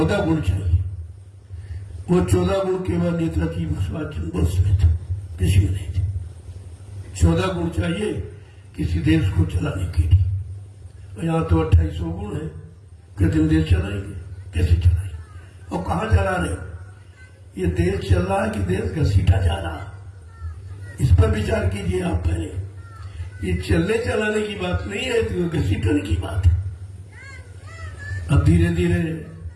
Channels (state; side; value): identical; both; correlation 1.00